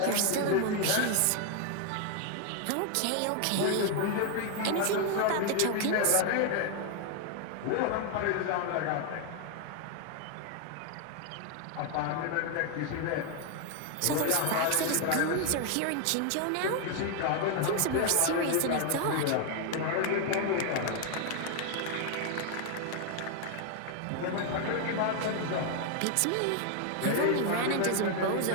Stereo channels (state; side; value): different; both; correlation 0.01